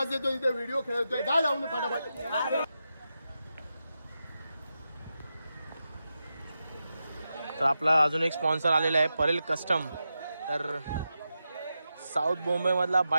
येतो इथे, व्हिडिओ खेळतोय. जा जाऊन फटाफट. तर आपला अजून एक स्पॉन्सर आलेला आहे, परेल कस्टम. तर साऊथ मुंबईमधला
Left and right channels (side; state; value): both; inverted; correlation -0.89